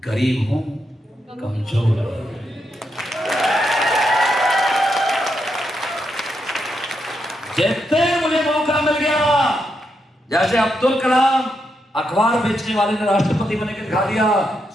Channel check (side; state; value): both; normal; correlation 0.82